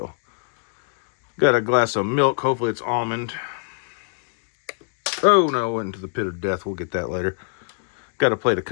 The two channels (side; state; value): right; silent; 63 dB below the other